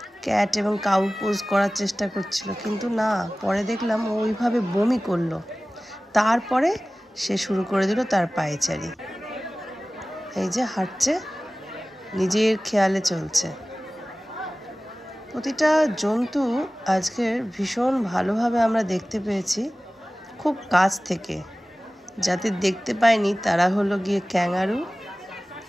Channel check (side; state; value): both; normal; correlation 0.97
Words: ক্যাট এবং কাউ পোজ করার চেষ্টা করছিল, কিন্তু না, পরে দেখলাম ওইভাবে বমি করলো। তারপরে সে শুরু করে দিল তার পায়চারি। এই যে হাঁটছে, নিজের খেয়ালে চলছে। প্রতিটা জন্তু আজকের ভীষণ ভালোভাবে আমরা দেখতে পেয়েছি, খুব কাছ থেকে। যাদের দেখতে পাইনি তারা হলো গিয়ে ক্যাঙ্গারু,